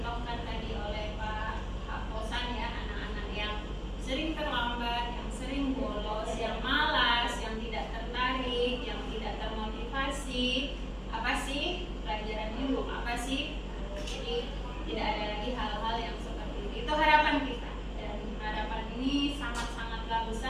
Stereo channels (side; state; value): both; identical; correlation 1.00